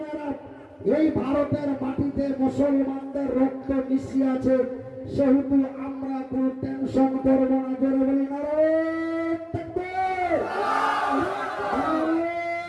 এই ভারতের মাটিতে মুসলমানদের রক্ত মিশিয়ে আছে। সেহেতু আমরা কোনো টেনশন করব না। জোরে বলি নারায়ে তাকবীর,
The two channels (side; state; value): both; identical; correlation 1.00